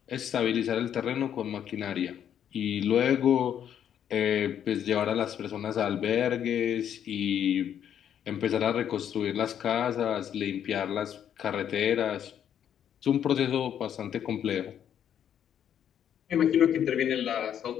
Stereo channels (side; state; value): right; quieter; 9.5 dB